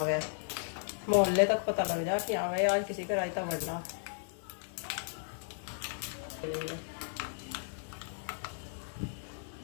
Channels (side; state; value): right; silent; digital silence